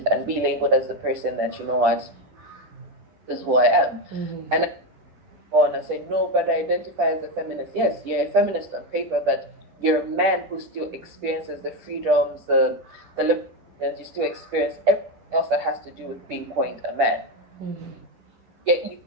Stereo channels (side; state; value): left; late; 9.9 ms